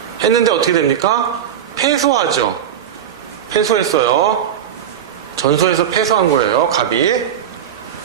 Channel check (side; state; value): left; quieter; 9.4 dB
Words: 했는데 어떻게 됩니까? 패소하죠. 패소했어요. 전소해서 패소한 거예요. 갑이.